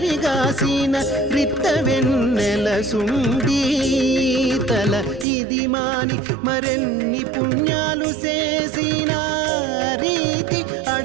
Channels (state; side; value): drops out; left; at 5.2 s